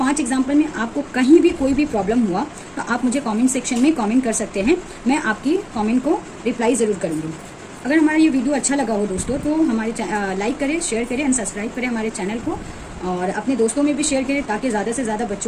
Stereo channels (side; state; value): both; identical; correlation 1.00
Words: एग्जाम्पल में आपको कहीं भी कोई भी प्रॉब्लम हुआ, तो आप मुझे कमेंट सेक्शन में कमेंट कर सकते हैं, मैं आपकी कमेंट को रिप्लाई ज़रूर करूँगी। अगर हमारा ये वीडियो अच्छा लगा हो दोस्तों, तो हमारे लाइक करें, शेयर करें एंड सब्सक्राइब करें हमारे चैनल को, और अपने दोस्तों में भी शेयर करें, ताकि ज़्यादा से ज़्यादा